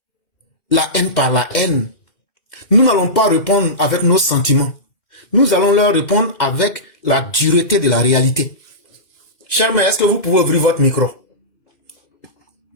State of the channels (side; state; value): right; late; 2.0 ms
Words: la haine par la haine. Nous n'allons pas répondre avec nos sentiments. Nous allons leur répondre avec la dureté de la réalité. Charme, est-ce que vous pouvez ouvrir votre micro?